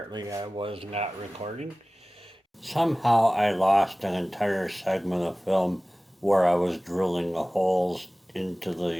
I was not recording. Somehow I lost an entire segment of film where I was drilling the holes into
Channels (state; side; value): normal; both; correlation 0.98